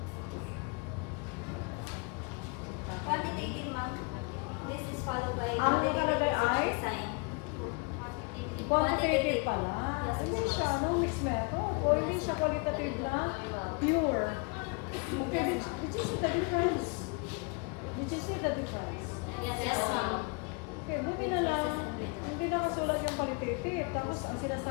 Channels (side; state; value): right; quieter; 31.7 dB